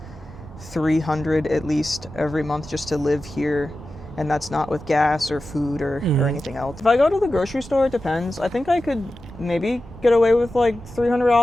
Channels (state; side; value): normal; both; correlation 0.93